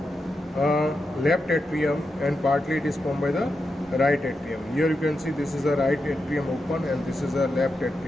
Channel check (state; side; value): normal; both; correlation 0.87